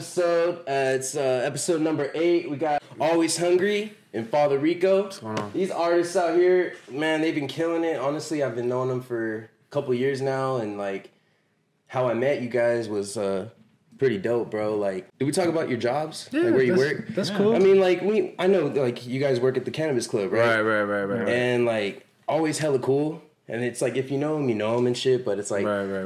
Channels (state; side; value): identical; both; correlation 1.00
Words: It's episode number 8. We got Always Hungry and Father Rico. What's going on? These artists out here, man, they've been killing it. Honestly, I've been knowing them for a couple years now, and like how I met you guys was pretty dope, bro. Like, did we talk about your jobs? Yeah, like where you work? That's cool. I mean, like I know like you guys work at the Cannabis Club, right? Right. And like always hella cool. And it's like, if you know him and shit, but it's like,